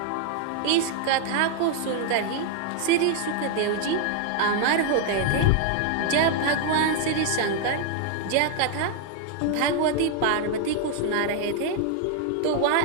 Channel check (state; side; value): different; both; correlation 0.00